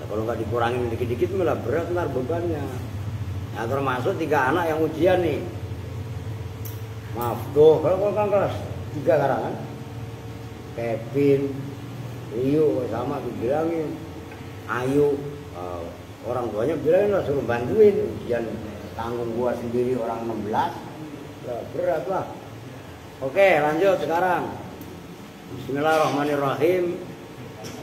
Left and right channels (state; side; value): noise; left; hum, 30 dB below the sound